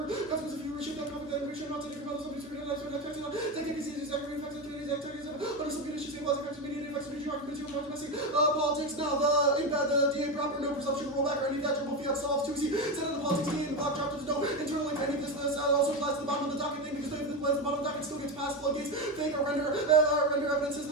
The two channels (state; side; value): normal; both; correlation 0.15